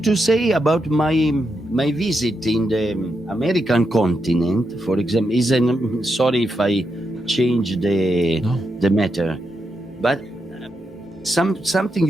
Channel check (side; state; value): both; normal; correlation 0.84